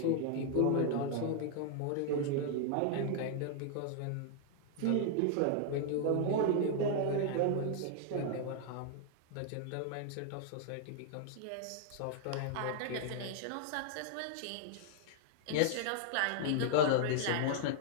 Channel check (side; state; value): both; different; correlation -0.01